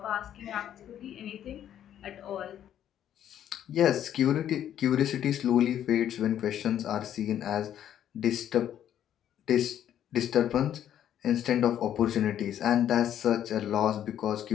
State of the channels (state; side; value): quieter; right; 10.6 dB